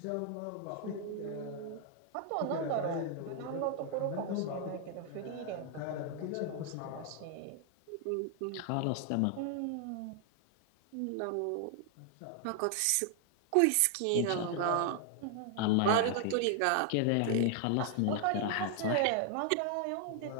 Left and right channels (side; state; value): both; different; correlation 0.00